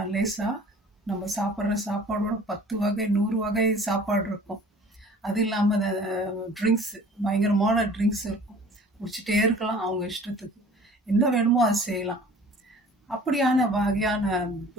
லேசா, நம்ம சாப்பிட்ற சாப்பாடோட 10 வகை 100 வகை சாப்பாடு இருக்கும். அது இல்லாமல் ட்ரிங்க்ஸ், பயங்கரமான ட்ரிங்க்ஸ் இருக்கும், குடிச்சிட்டே இருக்கலாம் அவங்க இஷ்டத்துக்கு, என்ன வேணுமோ அது செய்யலாம். அப்படியான வகையான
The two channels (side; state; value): both; normal; correlation 0.47